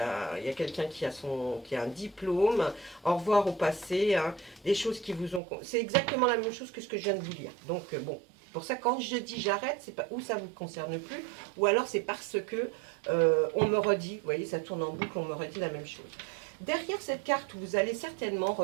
quelqu'un qui a un diplôme. Au revoir au passé, hein, des choses qui vous ont... C'est exactement la même chose que ce que je viens de vous lire. Donc bon, pour ça, quand je dis j'arrête, c'est pas où ça ne vous concerne plus, ou alors c'est parce que on me redit, vous voyez, ça tourne en boucle, on me redit la même chose. Derrière cette carte, vous allez certainement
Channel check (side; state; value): left; drops out; at 5.4 s